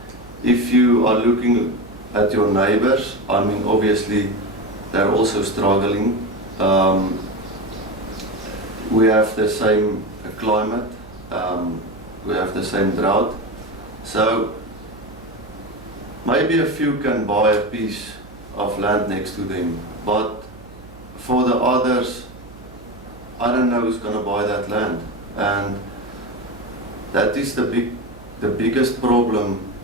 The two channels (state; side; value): noise; right; hum, 20 dB below the sound